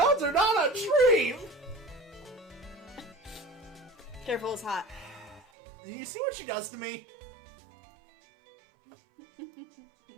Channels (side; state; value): left; drops out; at 5.5 s